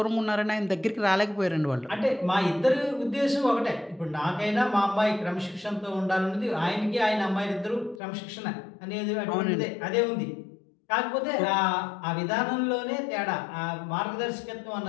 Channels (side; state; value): right; drops out; at 8.0 s